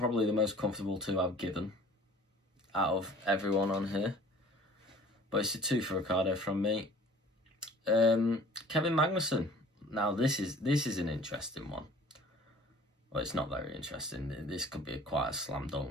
the most comfortable 2 I've given out of everyone on here. But it's a 2 for Ricciardo from me. Kevin Magnussen. Now this is an interesting one. Well, it's not very interesting. This could be quite a slam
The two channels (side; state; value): both; normal; correlation 0.49